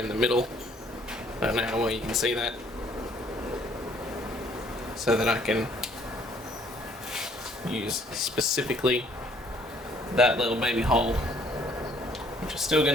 the middle. I don't know how well you can see that. So that I can use specifically that little baby hole, which is still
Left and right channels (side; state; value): both; normal; correlation 0.62